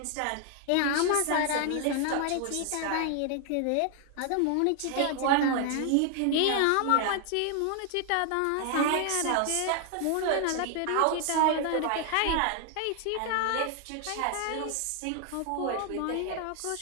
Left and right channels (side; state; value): both; different; correlation 0.00